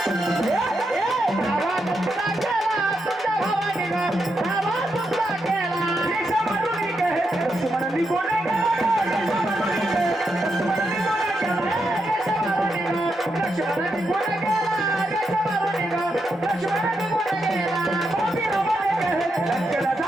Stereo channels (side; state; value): both; normal; correlation 0.83